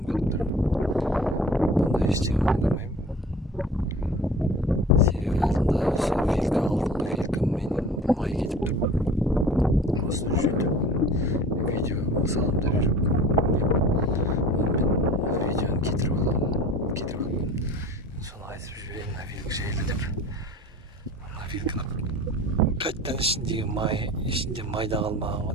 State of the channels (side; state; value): both; normal; correlation 0.43